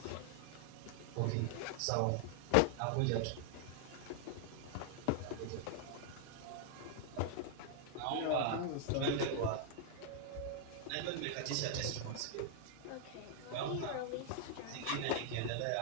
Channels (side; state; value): both; different; correlation 0.00